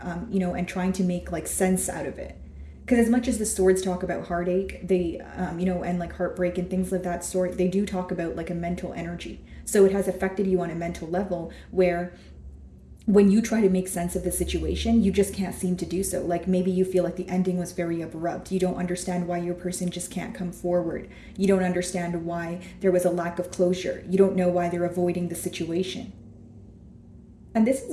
trying to make like sense out of it, because as much as the swords talk about heartache, they and like heartbreak and things of that sort, they do talk about like a mental energy. So it has affected you on a mental level where when you try to make sense of the situation, you just can't seem to do so. Like maybe you feel like the ending was very abrupt. You don't understand why your person just can't come forward. You don't understand why there was a lack of closure. You don't know why they're avoiding the situation. And this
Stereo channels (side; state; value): both; identical; correlation 1.00